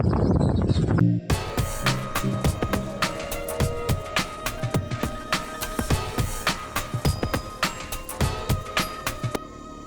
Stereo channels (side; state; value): both; identical; correlation 1.00